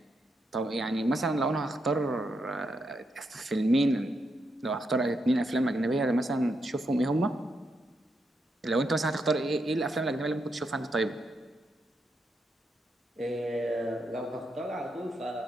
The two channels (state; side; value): normal; both; correlation 0.82